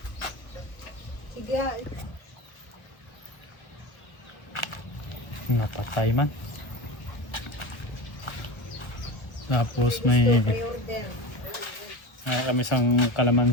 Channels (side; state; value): right; late; 1.2 ms